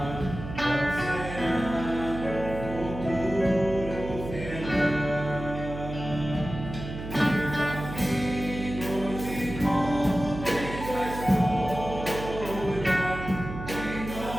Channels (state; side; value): noise; right; hum, 9 dB below the sound